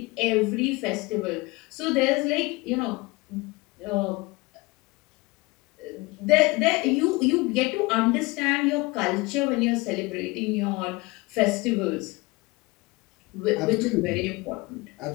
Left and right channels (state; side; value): quieter; right; 23.4 dB